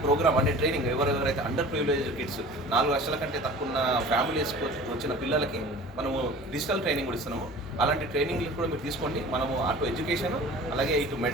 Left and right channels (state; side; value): normal; both; correlation 0.42